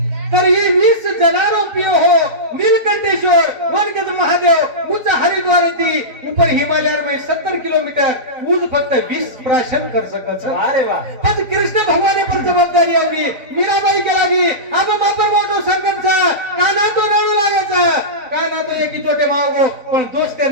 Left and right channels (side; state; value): left; late; 4.0 ms